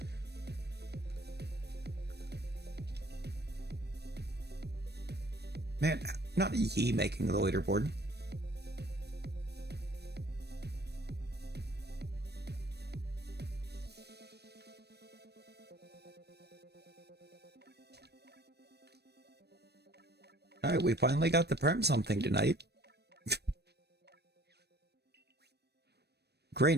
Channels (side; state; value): left; late; 0.48 ms